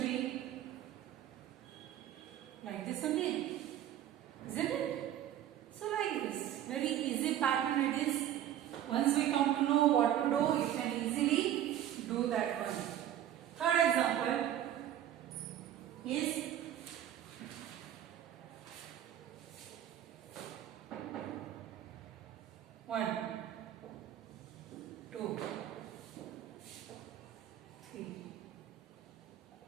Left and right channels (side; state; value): left; quieter; 11.5 dB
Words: be like this only, isn't it? So like this, very easy pattern it is. Once we come to know what to do, you can easily do that one. Third example is 1 2 3